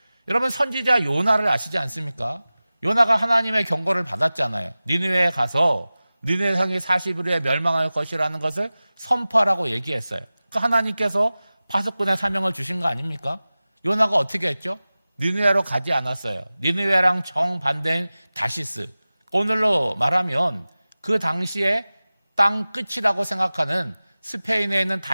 여러분 선지자 요나를 아시지 않습니까? 요나가 하나님의 경고를 받았잖아요. 니느웨에 가서 니느웨 성이 40일 후에 멸망할 것이라는 것을 선포하라고 얘기했어요. 그 하나님께서 파수꾼의 사명을 주신 거 아닙니까? 요나가 어떻게 했죠? 니느웨로 가지 않았어요. 니느웨랑 정반대인 다시스. 오늘로 말하면 그 당시에 땅 끝이라고 생각하는 스페인에 있는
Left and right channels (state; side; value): inverted; both; correlation -0.97